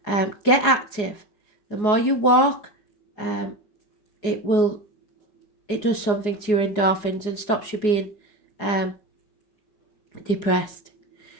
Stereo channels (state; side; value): late; right; 4.8 ms